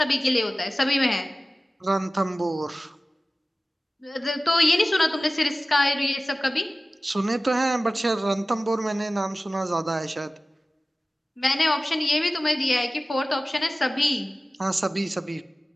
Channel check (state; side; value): normal; both; correlation 0.96